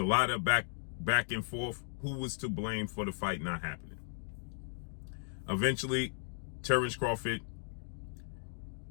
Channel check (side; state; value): right; silent; digital silence